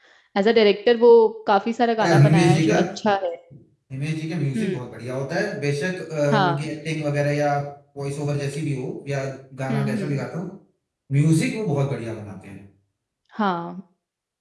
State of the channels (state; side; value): identical; both; correlation 1.00